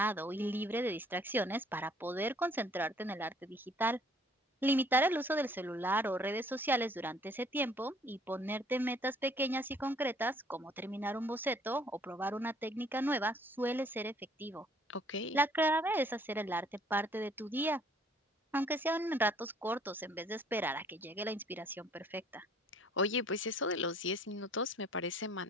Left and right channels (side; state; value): both; normal; correlation 0.59